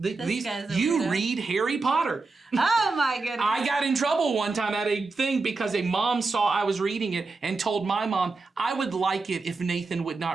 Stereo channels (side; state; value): left; quieter; 3.9 dB